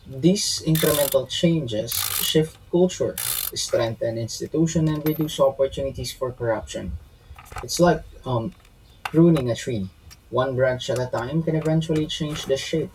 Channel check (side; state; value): both; identical; correlation 1.00